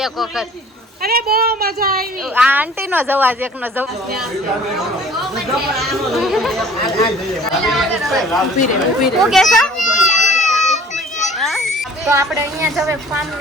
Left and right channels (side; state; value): both; normal; correlation 0.50